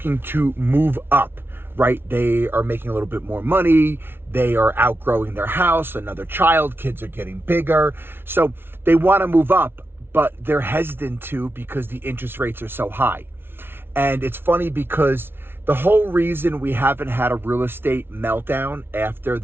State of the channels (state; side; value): late; left; 0.11 ms